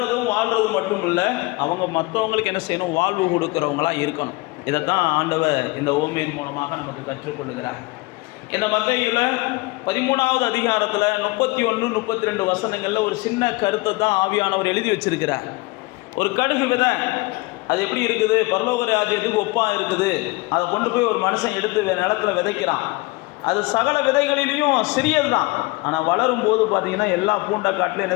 வாழ்கிறதும் மட்டும் இல்லை, அவங்க மற்றவங்களுக்கு என்ன செய்யணும்? வாழ்வு கொடுக்குறவங்களாக இருக்கணும். இதைத்தான் ஆண்டவர் இந்த ஓமையின் மூலமாக நமக்கு கற்றுக்கொள்ளுகிறார். இந்த மத்தேயுல 13வது அதிகாரத்தில் 31, 32 வசனங்களில் ஒரு சின்ன கருத்தை தான் ஆவியானவர் எழுதி வச்சிருக்கிறார். ஒரு கடுகு விதை அது எப்படி இருக்குது? பரலோக ராஜ்யத்துக்கு ஒப்பாக இருக்குது. அதை கொண்டு போய் ஒரு மனுஷன் எடுத்து நிலத்தில் விதைக்கிறான். அது சகல விதைகளிலையும் சிறியது தான், ஆனால் வளரும் போது பார்த்தீங்கன்னா எல்லா பூண்டக்காட்டிலும்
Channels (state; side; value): quieter; right; 23.5 dB